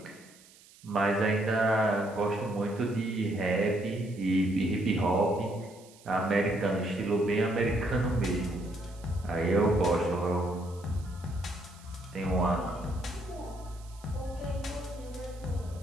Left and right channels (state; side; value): noise; right; hiss, 24 dB below the sound